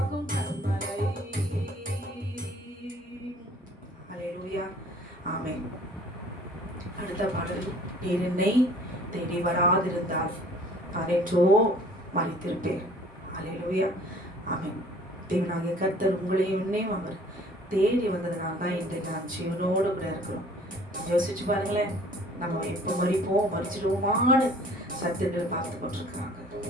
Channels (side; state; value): both; normal; correlation 0.52